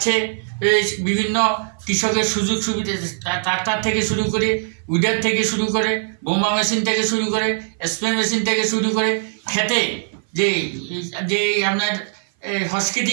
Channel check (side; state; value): left; silent; 59 dB below the other